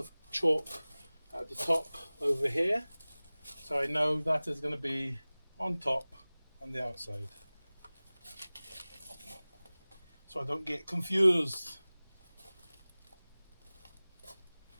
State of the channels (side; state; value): both; inverted; correlation -0.99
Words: chalk at the top over here. So I know that is going to be on top on the outside. So I don't get confused.